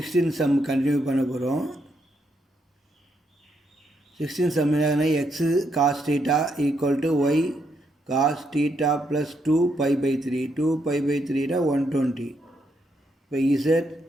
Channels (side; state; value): both; normal; correlation 0.78